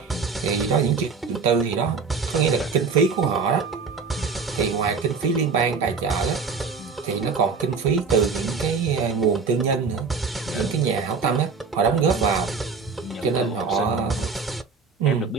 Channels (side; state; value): left; quieter; 5.2 dB